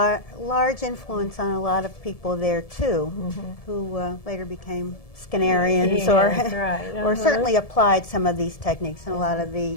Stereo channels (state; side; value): late; right; 1.7 ms